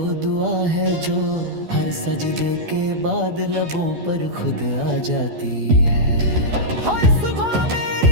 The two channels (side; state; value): left; late; 12 ms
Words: दुआ है जो हर सजदे के बाद लबों पर खुद आ जाती है। हर सुबह